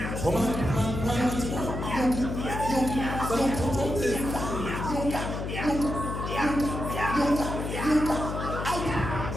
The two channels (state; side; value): noise; left; hum, 4 dB below the sound